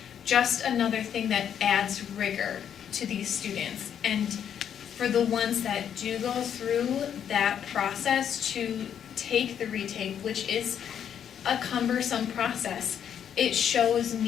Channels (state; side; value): quieter; right; 8.8 dB